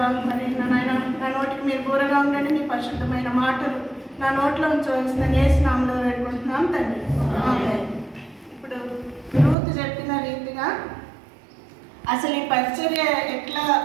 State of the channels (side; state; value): left; drops out; at 9.6 s